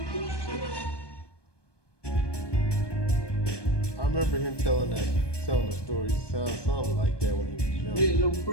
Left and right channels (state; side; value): late; right; 1.2 ms